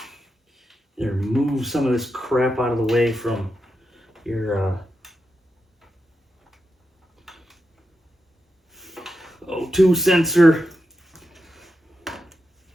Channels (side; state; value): both; normal; correlation 0.88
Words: move some of this crap out of the way from your O2 sensor.